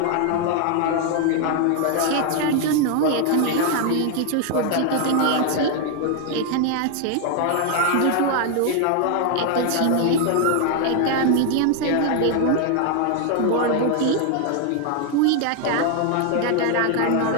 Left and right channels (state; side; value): different; both; correlation 0.00